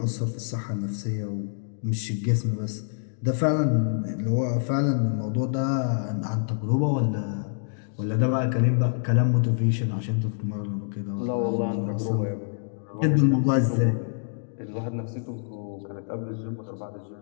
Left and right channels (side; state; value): right; silent; digital silence